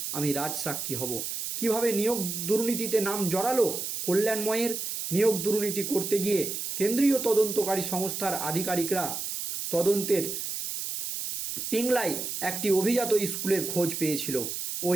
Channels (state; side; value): noise; right; hiss, 4 dB below the sound